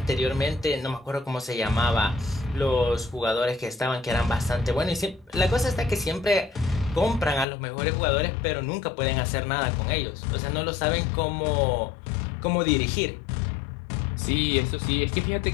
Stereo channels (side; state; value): right; drops out; at 7.5 s